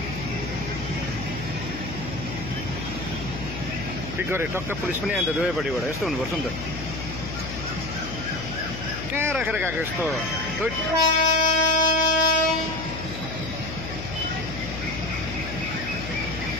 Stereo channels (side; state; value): left; noise; hum, 8 dB below the sound